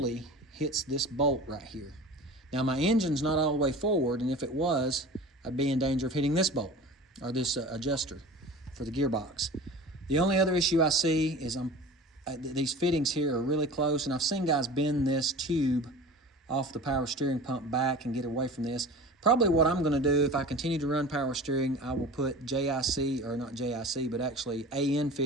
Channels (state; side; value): normal; both; correlation 0.37